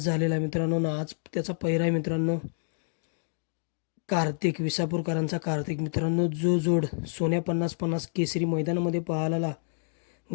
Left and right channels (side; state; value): right; silent; digital silence